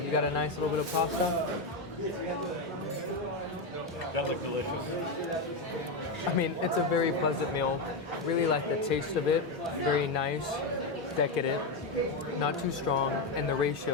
you got a nice little bit of pasta. That looks delicious. I mean, it's a very pleasant meal. Really like the taste of it. Very nice, decadent, not too strong, and the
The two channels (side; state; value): right; quieter; 3.1 dB